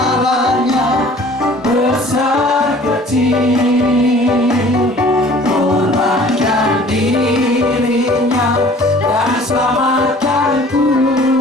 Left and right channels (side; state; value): both; normal; correlation 0.50